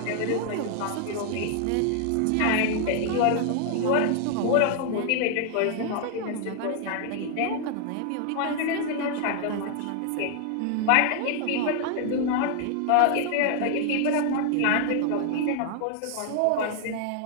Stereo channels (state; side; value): different; both; correlation 0.00